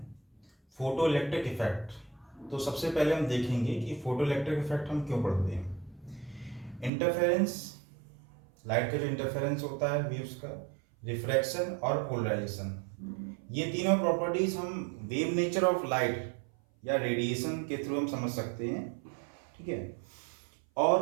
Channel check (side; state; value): left; drops out; at 6.9 s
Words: फोटो इलेक्ट्रिक इफेक्ट। तो सबसे पहले हम देखेंगे कि फोटो इलेक्ट्रिक इफेक्ट हम क्यों पढ़ते हैं। इंटरफेरेंस, लाइट का जो इंटरफेरेंस होता है वेव्स का, रिफ्रैक्शन और पोलराइजेशन, ये तीनों प्रॉपर्टीज हम वेव नेचर ऑफ लाइट या रेडिएशन के थ्रू हम समझ सकते हैं। ठीक है।